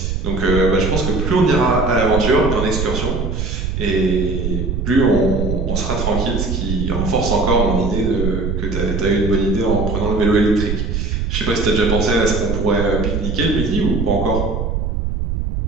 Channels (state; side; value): noise; right; rumble, 2 dB below the sound